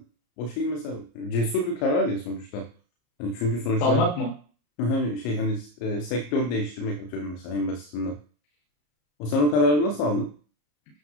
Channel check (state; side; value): late; right; 34 ms